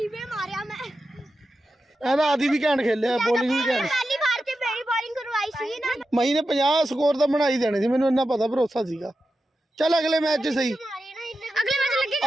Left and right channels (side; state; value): both; normal; correlation 0.91